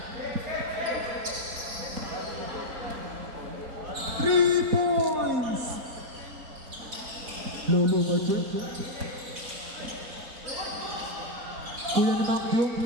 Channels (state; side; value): late; left; 4.1 ms